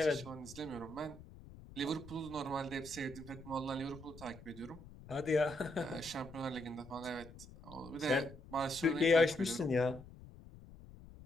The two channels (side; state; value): left; noise; rumble, 17 dB below the sound